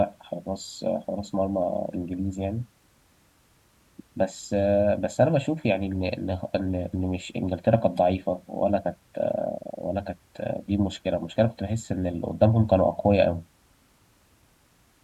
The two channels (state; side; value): identical; both; correlation 1.00